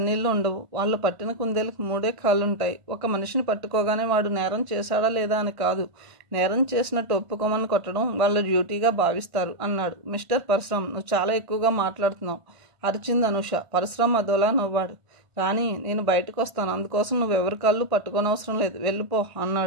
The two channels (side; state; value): left; late; 1.5 ms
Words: ఉండవు. వాళ్ళు పట్టిన కుందేలకు 3 కాళ్ళుంటాయి. ఒక మనిషిని పట్టుకోగానే వాడు నేరం చేశాడా లేదా అని కాదు, నేరం చేసినట్టు ఒప్పుకోమని కొట్టడం వాళ్ళ డ్యూటీగా భావిస్తారు అన్నాడు. మిస్టర్ పరశురాం, నువ్వు చాలా ఎక్కువగా మాట్లాడుతున్నావు అరిచింది అనూష. పరశురాం అదోలా నవ్వాడు. రాణి, నేను బయటకు వస్తాను, అందుకోసం నువ్వెవరి కాళ్ళు పట్టుకోనవసరం లేదు, వెళ్ళిపో